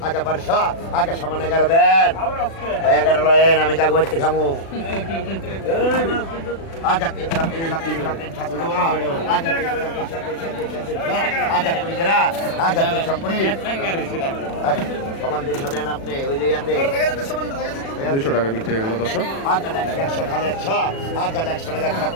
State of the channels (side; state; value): right; late; 36 ms